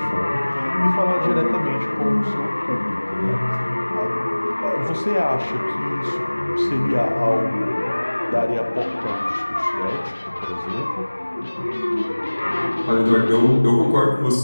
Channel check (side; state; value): both; inverted; correlation -1.00